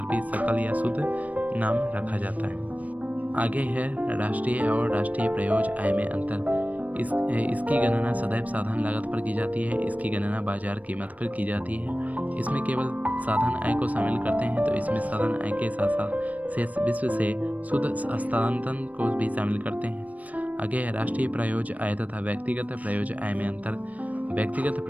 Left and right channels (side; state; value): left; late; 0.072 ms